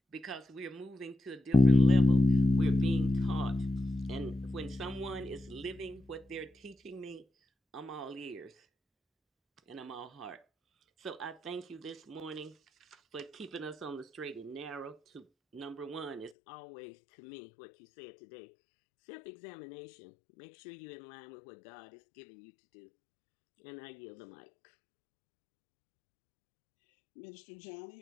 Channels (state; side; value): drops out; right; at 16.3 s